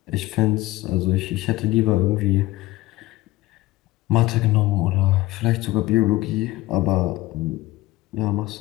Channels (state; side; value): quieter; right; 18.0 dB